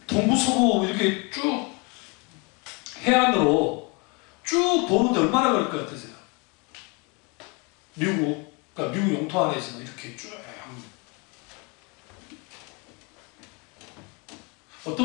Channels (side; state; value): right; quieter; 30.5 dB